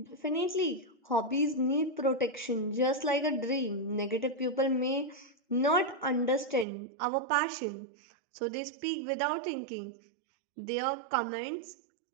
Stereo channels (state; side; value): drops out; left; at 6.7 s